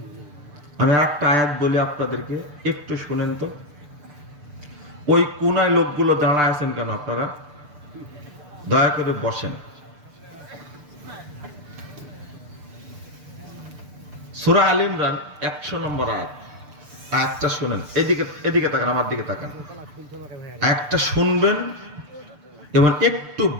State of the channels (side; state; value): left; late; 6.8 ms